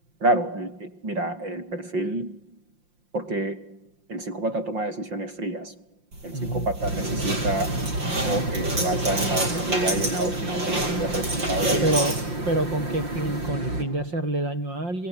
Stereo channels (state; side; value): late; left; 5.7 ms